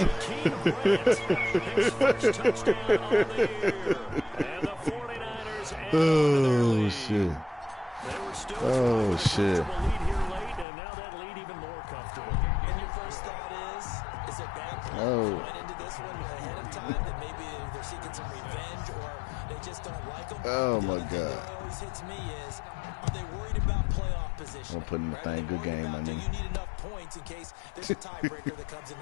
Grant, his first touchdown on the year. And the 49ers Oh, shit. They were still Oh, shit. lead here late, and now that lead even more comfortable. And your first thought is it bad went into this one ahead of time that maybe they're seeking some revenge or they just don't like them. Oh, my God. God. What always hits me is, are they worried about playoff position? I'm putting the thing, good game, man. Do you need enough points in case there's a tiebreaker that comes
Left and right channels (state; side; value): drops out; right; at 10.7 s